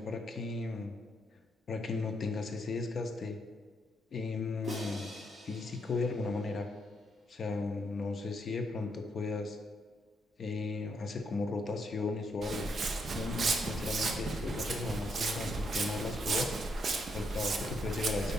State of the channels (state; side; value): normal; both; correlation 0.77